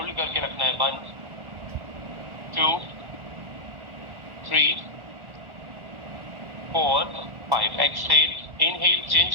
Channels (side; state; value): left; late; 1.4 ms